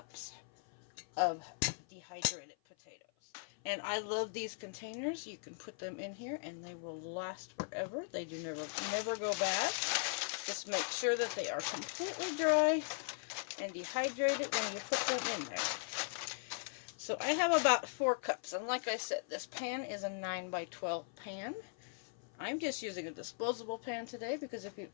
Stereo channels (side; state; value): right; silent; 52 dB below the other